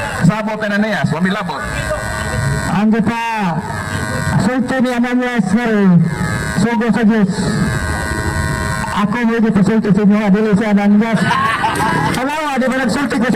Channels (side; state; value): both; identical; correlation 1.00